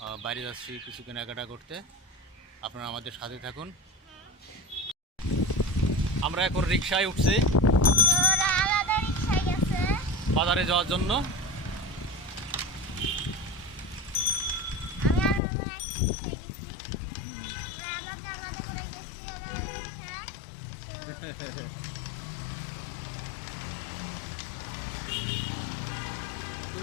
বাইরে যাচ্ছি কিছু কেনাকাটা করতে। আপনারা আমাদের সাথে থাকুন। আমরা এখন রিকশায় উঠছি বাজারে যাওয়ার জন্য।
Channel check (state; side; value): drops out; right; at 15.4 s